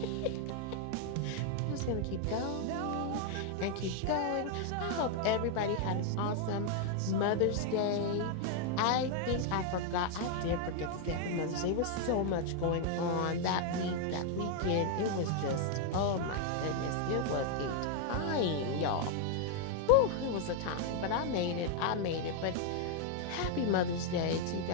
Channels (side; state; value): both; different; correlation 0.00